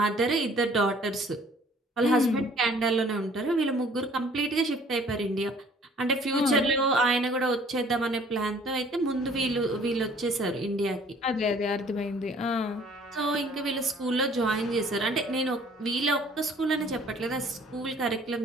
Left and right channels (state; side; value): normal; both; correlation 0.55